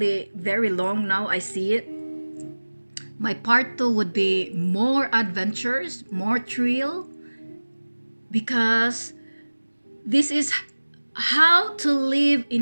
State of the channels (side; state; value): both; inverted; correlation -1.00